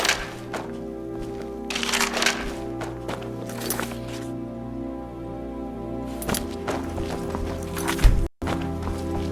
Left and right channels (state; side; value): identical; both; correlation 1.00